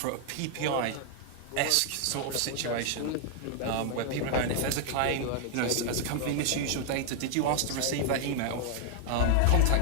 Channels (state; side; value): different; both; correlation 0.00